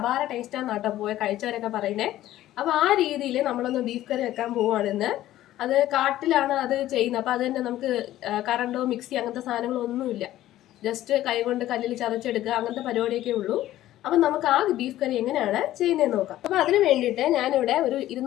ടേസ്റ്റാണ് കേട്ടോ പോയ കഴിച്ചവരൊക്കെ പറയുന്നത്. അപ്പോൾ ആ രീതിയിൽ നമ്മളൊന്ന് ബീഫ് കറി വെക്കാൻ പോവുകയാണെന്ന്. അത് കാട്ടിലാണ് അത് ചെയ്യുന്നത്. അപ്പോൾ അത് തന്നെ നമുക്ക് കറണ്ടോ മിക്സി അങ്ങനത്തെ സാധനങ്ങളോ ഒന്നുമില്ല. ജസ്റ്റ് കൈകൊണ്ട് കല്ലിൽ ചതച്ചെടുക്കുക, അങ്ങനത്തെ പരിപാടിയൊക്കെ ഉള്ളൂ. അപ്പം നമുക്ക് ആ ബീഫ് കറി എങ്ങനെയാണ് ചെയ്യുന്നതെന്ന് നോക്കാം. അപ്പം അതിന് വേണ്ടിയിട്ട് ഞാനിവിടെ ഒരു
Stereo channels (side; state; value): right; quieter; 14.1 dB